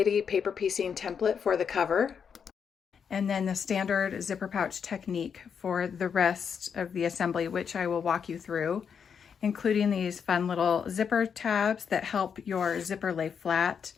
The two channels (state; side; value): quieter; right; 7.0 dB